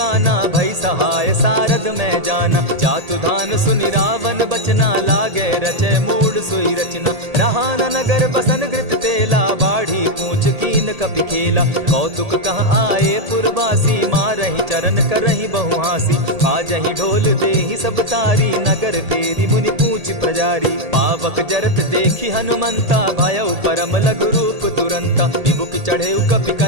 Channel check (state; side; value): late; left; 1.8 ms